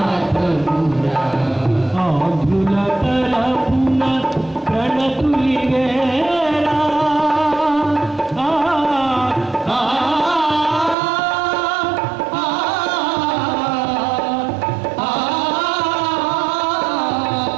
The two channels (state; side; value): drops out; left; at 11.0 s